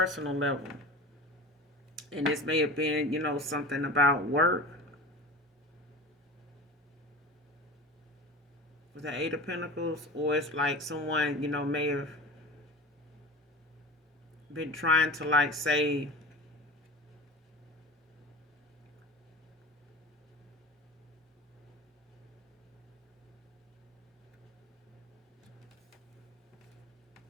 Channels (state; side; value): normal; both; correlation 0.33